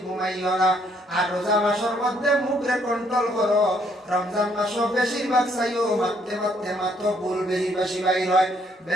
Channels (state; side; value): normal; both; correlation 0.68